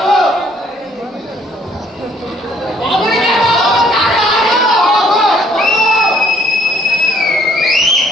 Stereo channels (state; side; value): normal; both; correlation 0.63